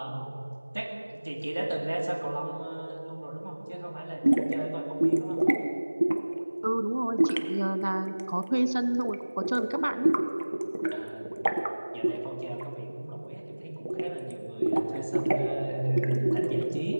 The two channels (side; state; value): both; inverted; correlation -1.00